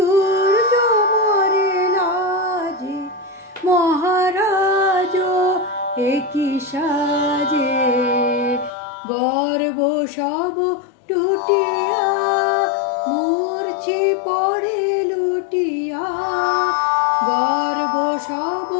মরে লাজে। মহারাজ একই সাজে গর্ব সব টুটিয়া মূর্ছি পড়ে লুটিয়া, গর্ব সব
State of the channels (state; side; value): drops out; right; at 8.7 s